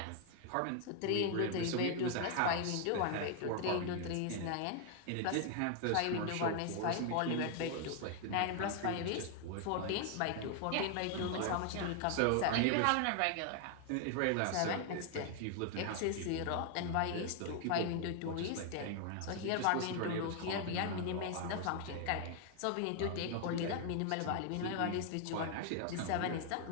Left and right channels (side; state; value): both; different; correlation 0.00